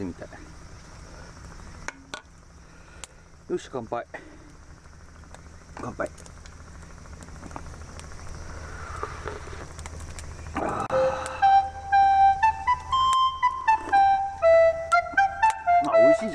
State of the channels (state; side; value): identical; both; correlation 1.00